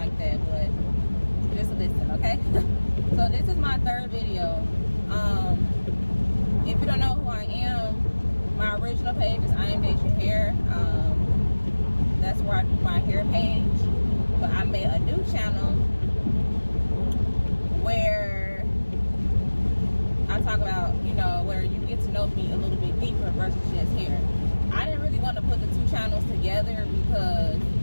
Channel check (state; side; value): inverted; both; correlation -1.00